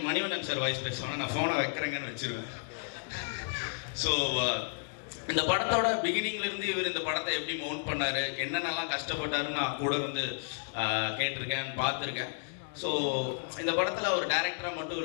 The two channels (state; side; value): silent; right; digital silence